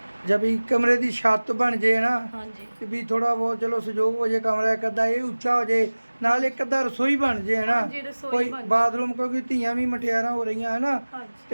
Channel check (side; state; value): both; inverted; correlation -1.00